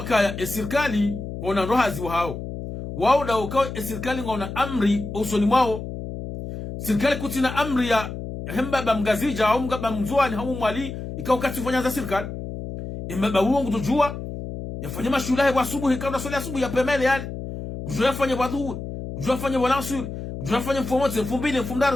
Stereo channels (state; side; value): noise; left; hum, 8 dB below the sound